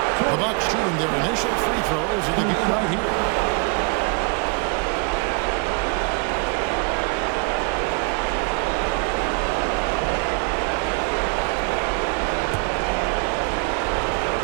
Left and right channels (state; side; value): quieter; left; 31.3 dB